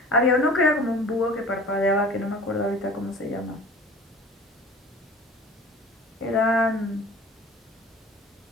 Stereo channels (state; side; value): normal; both; correlation 0.43